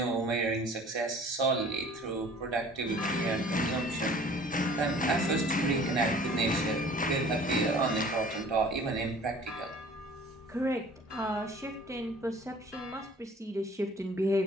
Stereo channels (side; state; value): both; normal; correlation 0.49